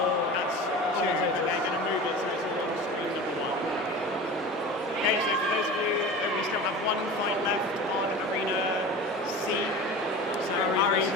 That's 2, but they're going to move it so it's all on stream number 1. Okay, so for those of you, we still have one fight left on arena C. So Ari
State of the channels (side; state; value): both; normal; correlation 0.34